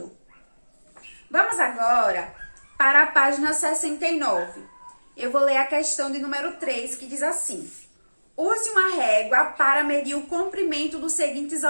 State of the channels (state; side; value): inverted; both; correlation -1.00